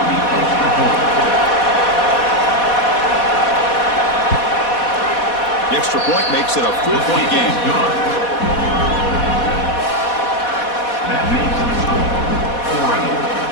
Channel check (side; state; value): right; late; 4.1 ms